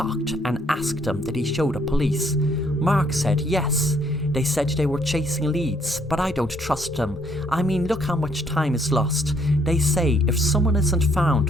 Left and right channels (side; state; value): both; normal; correlation 0.67